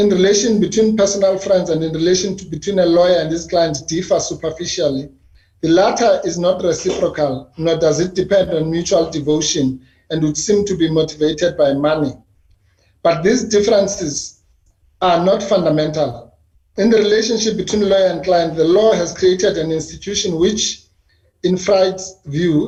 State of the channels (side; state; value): both; identical; correlation 1.00